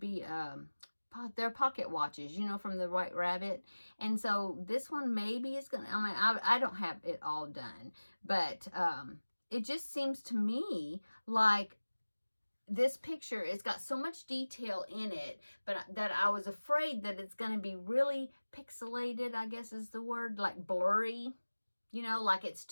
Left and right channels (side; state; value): both; inverted; correlation -1.00